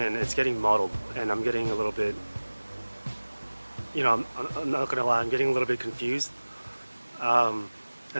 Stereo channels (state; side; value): inverted; both; correlation -1.00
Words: it's getting muddled, and I'm getting a little bit, I'm not gonna lie, I'm getting a little bit confused. And